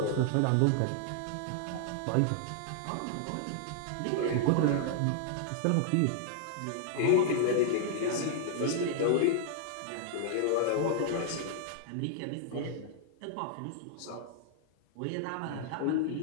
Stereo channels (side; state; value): both; different; correlation -0.01